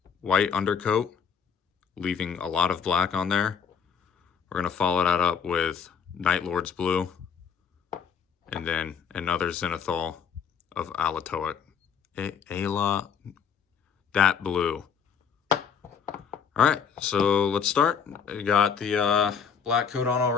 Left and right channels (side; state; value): right; quieter; 6.9 dB